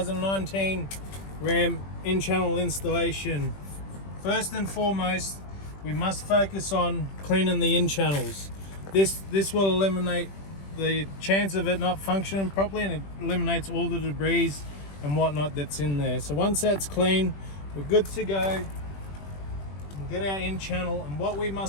Ram in-channel installation. First and foremost, we must focus on cleaning the in-channels. This will eliminate the chance of it not functioning properly, and it eliminates all the debris and whatnot that's in there. So once that's clean, we're good to go. We'll get our in-channel, and what we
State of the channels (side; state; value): right; late; 21 ms